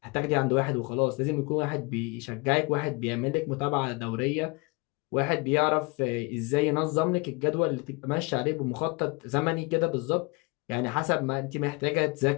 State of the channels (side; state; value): right; quieter; 27.8 dB